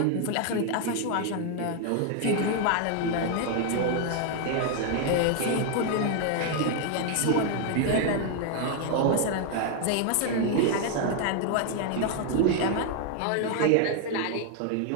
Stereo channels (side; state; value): both; different; correlation 0.00